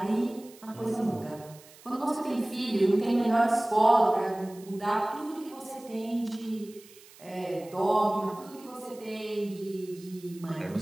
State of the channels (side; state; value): right; noise; hiss, 23 dB below the sound